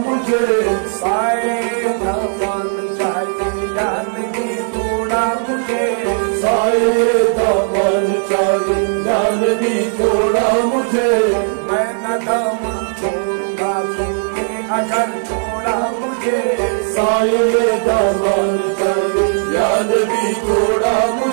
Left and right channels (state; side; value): silent; left; digital silence